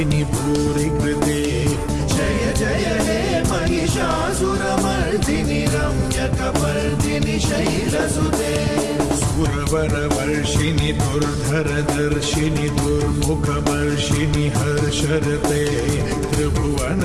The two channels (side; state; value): both; identical; correlation 1.00